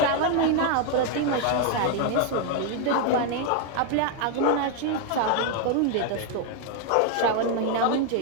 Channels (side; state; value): both; different; correlation 0.00